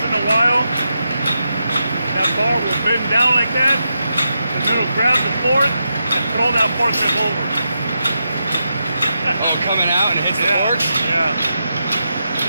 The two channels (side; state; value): both; inverted; correlation -0.86